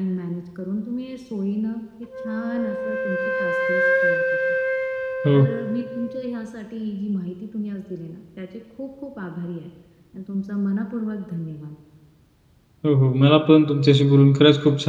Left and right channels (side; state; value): both; identical; correlation 1.00